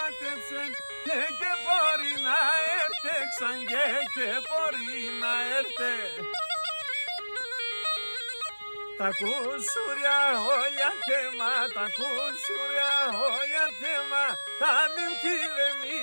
και μπορεί να έρθε ξανγε και μπορεί να έρθε. Τα κουσουριά όλια θέμα, τα κουσουριά όλια θέμα, τα νύμφη δε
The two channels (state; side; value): inverted; both; correlation -1.00